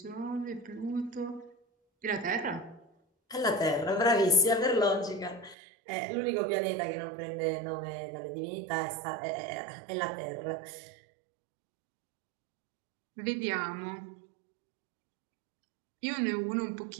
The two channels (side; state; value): left; drops out; at 5.6 s